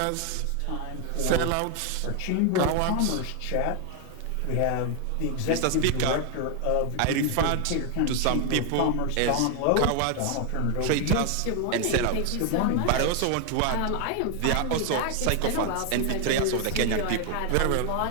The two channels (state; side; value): different; both; correlation 0.01